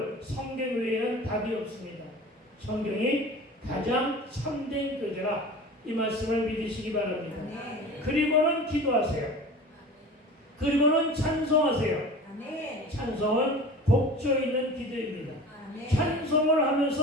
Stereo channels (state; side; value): normal; both; correlation 0.38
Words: 성경 외에는 답이 없습니다. 성경이 가장 참된 교재라 이 말씀을 믿으시기 바랍니다. 아멘. 그리고는 기도하세요. 그리고는 찬송하세요. 아멘. 찬송은 곡조 있는 기도입니다. 아멘. 찬송을